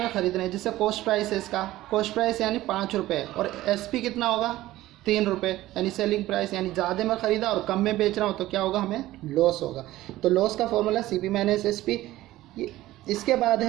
ख़रीद रहे हैं, जैसे कॉस्ट प्राइस है इसका, कॉस्ट प्राइस यानी 5 रुपये, और एसपी कितना होगा? 3 रुपये, यानी सेलिंग प्राइस, यानी ज़्यादा में ख़रीदा और कम में बेच रहा हूँ, तो क्या होगा? हमें लॉस होगा। तो लॉस का फॉर्मूला सीपी माइनस एसपी। इसके बाद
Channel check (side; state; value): left; quieter; 16.0 dB